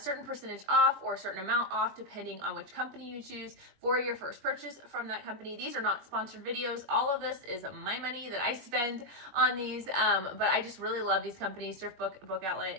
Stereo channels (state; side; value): late; left; 21 ms